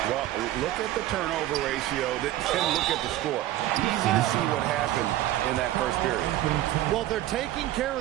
Well, look at the turnover ratio, then look at the score. Easy to see what happened in that first period. Well, they're taking care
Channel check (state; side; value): quieter; left; 14.4 dB